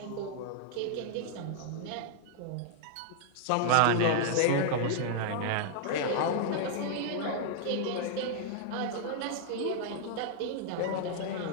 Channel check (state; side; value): different; both; correlation -0.01